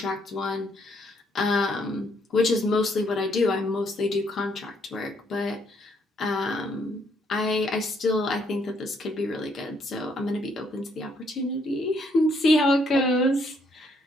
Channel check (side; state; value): both; normal; correlation 0.70